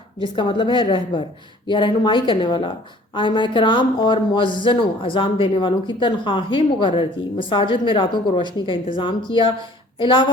جس کا مطلب ہے رہبر یا رہنمائی کرنے والا، آئمہ کرام اور مؤذنوں اذان دینے والوں کی تنخواہیں مقرر کی، مساجد میں راتوں کو روشنی کا انتظام کیا،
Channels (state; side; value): normal; both; correlation 0.52